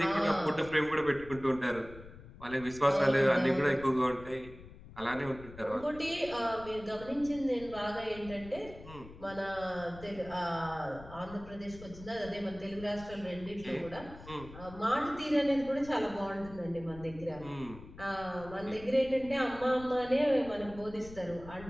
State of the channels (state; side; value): noise; left; rumble, 17 dB below the sound